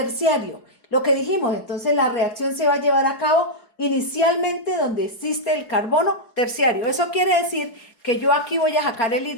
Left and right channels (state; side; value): late; right; 4.7 ms